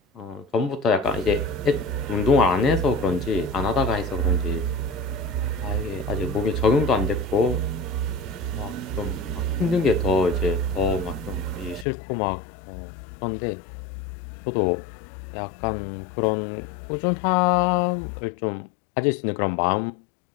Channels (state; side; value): drops out; right; at 11.9 s